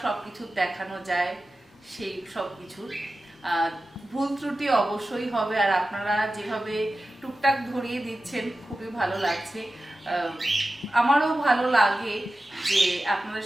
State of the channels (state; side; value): normal; both; correlation 0.94